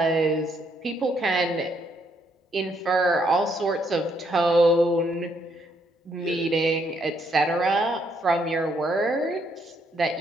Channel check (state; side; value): normal; both; correlation 0.72